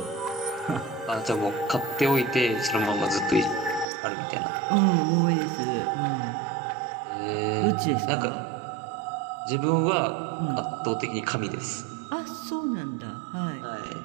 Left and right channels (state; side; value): drops out; left; at 3.9 s